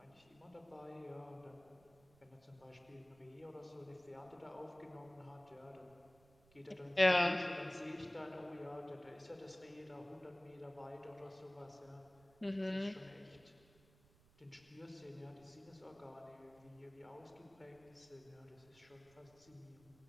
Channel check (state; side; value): noise; right; rumble, 27 dB below the sound